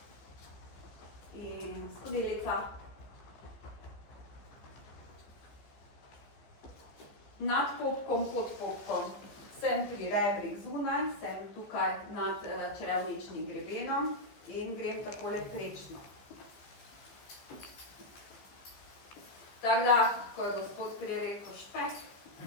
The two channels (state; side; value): late; right; 15 ms